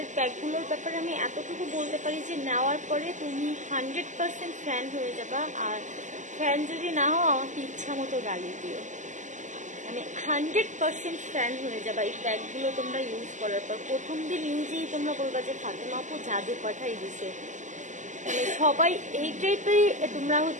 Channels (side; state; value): left; late; 0.36 ms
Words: প্যাকগুলোর ব্যাপারে আমি এতটুকু বলতে পারি যে নেওয়ার পরে তুমি 100% ফ্যান হয়ে যাবা, আর ফ্যান যদি না হও আমাকে ইচ্ছা মতো গালি দিও, মানে 100% ফ্যান হয়ে যাবা এই প্যাকগুলো তোমরা ইউজ করার পর। প্রথম দিন ইউজেই তোমরা বলবা যে ফাতেমা আপু জাদু পাঠাই দিছে, মানে সবাই এই টাইপেরই তোমরা